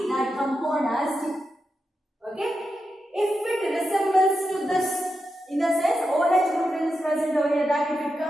that compound as D. Okay, if it resembles to this, in the sense OH group is present over here, that if it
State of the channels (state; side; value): normal; both; correlation 0.87